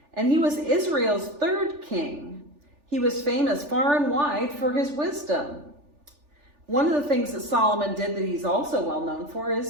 And he was Israel's third king. He was famous far and wide for his wisdom. One of the things that Solomon did that he's also well known for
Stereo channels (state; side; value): late; left; 3.4 ms